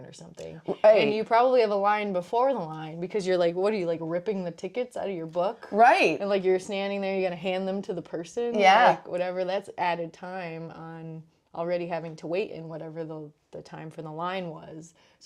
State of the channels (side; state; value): both; identical; correlation 1.00